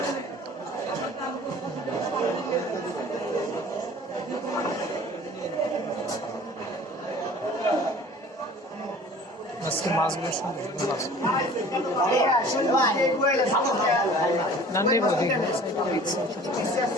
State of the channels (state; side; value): normal; both; correlation 0.46